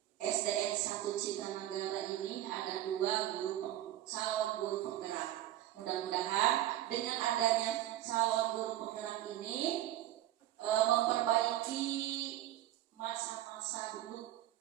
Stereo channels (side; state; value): left; quieter; 13.5 dB